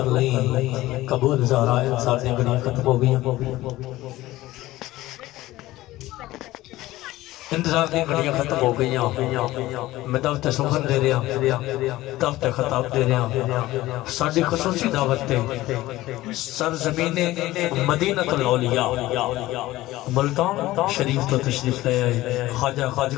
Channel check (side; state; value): right; quieter; 17.1 dB